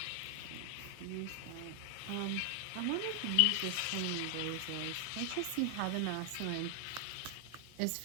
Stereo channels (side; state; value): both; different; correlation 0.00